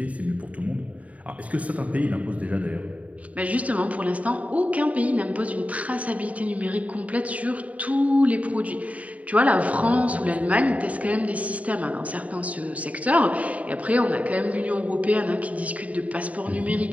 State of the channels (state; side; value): late; left; 0.069 ms